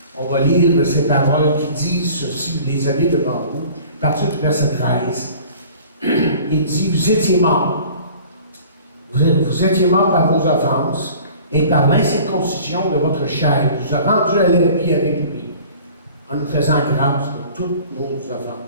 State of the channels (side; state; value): both; inverted; correlation -0.47